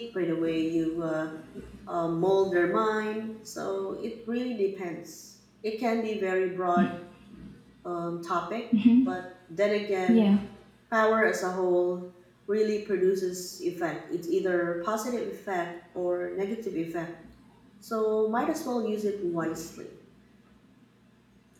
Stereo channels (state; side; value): identical; both; correlation 1.00